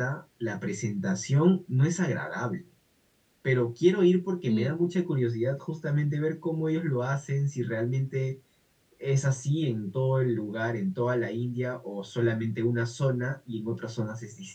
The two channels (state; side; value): identical; both; correlation 1.00